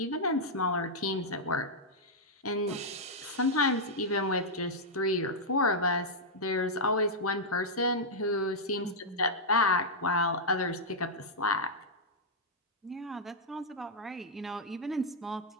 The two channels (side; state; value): both; normal; correlation -0.06